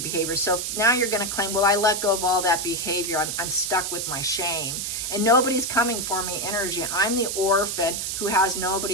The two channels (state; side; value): noise; right; hiss, 3 dB below the sound